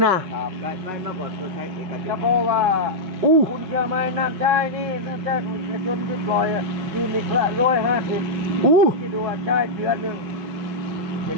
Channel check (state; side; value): late; left; 5.4 ms